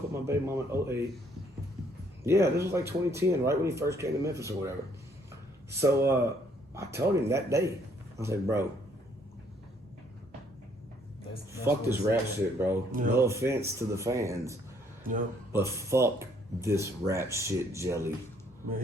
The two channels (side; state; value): both; normal; correlation 0.66